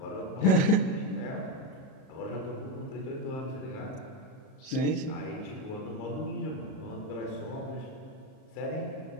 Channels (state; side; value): late; right; 38 ms